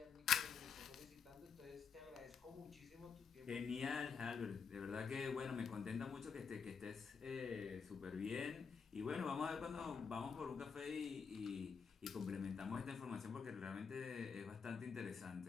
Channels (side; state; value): right; quieter; 6.1 dB